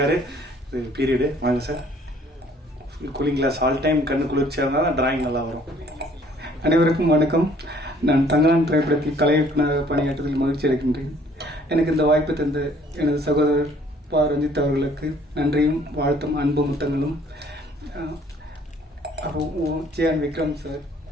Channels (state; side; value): normal; both; correlation 0.58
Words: பீரியடு வாங்க sir. Cooling glass all time கண்ணு குளிர்ச்சியாக இருந்தால் டிராயிங் நல்லா வரும். அனைவருக்கும் வணக்கம். நான் தங்கான் திரைப்படத்தில் கலை இயக்குநராக பணியாற்றுவதில் மகிழ்ச்சி அடைகின்றேன். எனக்கு இந்த வாய்ப்பு தந்த எனது சகோதரர் பா ரஞ்சித் அவர்களுக்கு நன்றியும் வாழ்த்தும் அன்பு முத்தங்களும். ஜியான் விக்ரம் சார்,